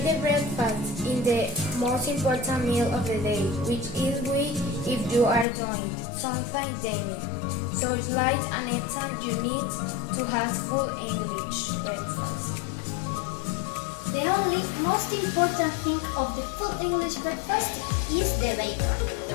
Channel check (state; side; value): drops out; right; at 5.5 s